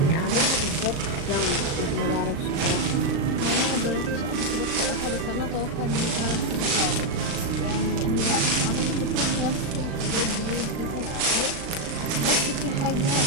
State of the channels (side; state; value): left; late; 36 ms